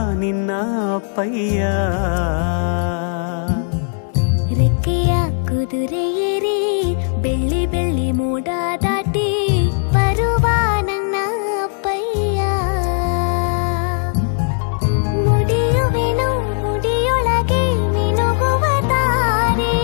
ನಿನ್ನ ಅಪ್ಪಯ್ಯ. ರೆಕ್ಕೆಯ ಕುದುರೆ ಏರಿ ಬೆಳ್ಳಿ ಬೆಳ್ಳಿ ಮೋಡ ದಾಟಿ ಬರುವ ನನ್ನ ಅಪ್ಪಯ್ಯ. ಮುಡಿಯುವೆನು ಮುಡಿಯೊಳಗೆ ಮಿನುಗುವ ತಾರೆ,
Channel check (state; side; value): silent; right; digital silence